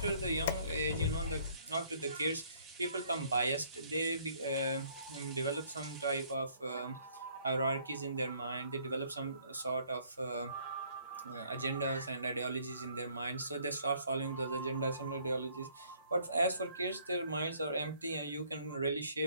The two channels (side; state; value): both; inverted; correlation -0.62